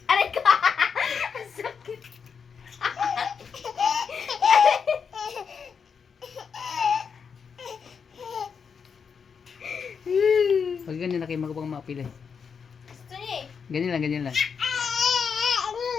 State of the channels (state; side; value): quieter; right; 6.3 dB